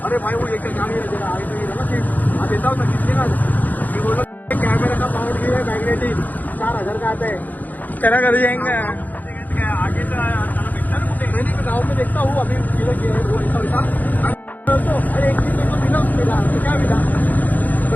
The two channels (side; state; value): right; late; 0.083 ms